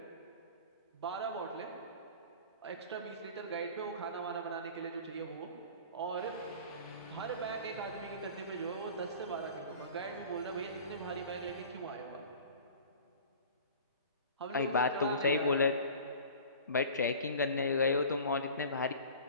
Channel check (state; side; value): inverted; both; correlation -0.42